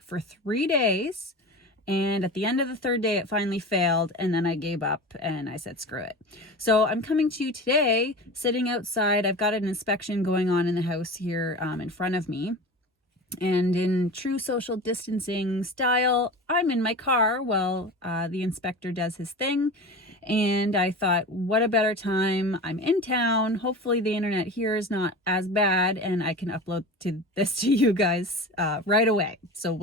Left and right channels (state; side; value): normal; both; correlation 0.32